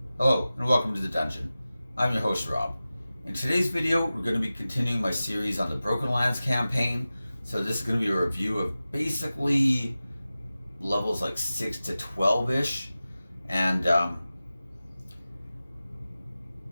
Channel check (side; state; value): both; inverted; correlation -0.95